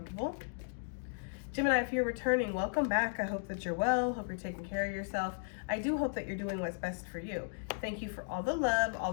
Gemini, if you're returning, welcome back. I hope that you're well. Hope you're taking care of yourself. I do hope that you're doing what's best for you. Thank you for all the love, all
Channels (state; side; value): silent; right; digital silence